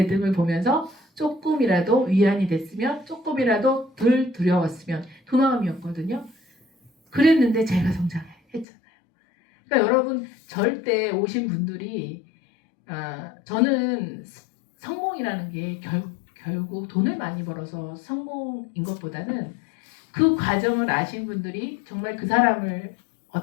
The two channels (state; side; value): drops out; right; at 8.7 s